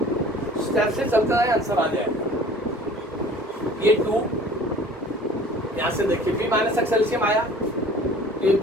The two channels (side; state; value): both; normal; correlation 0.48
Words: स्टेप से चलता है आंसर आ जाएगा। ये 2 यहां से देखिए b माइनस एक्स एलसीएम आया, ये